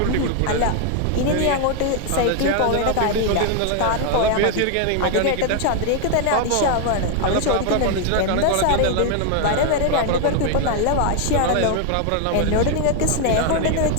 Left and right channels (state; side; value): different; both; correlation 0.00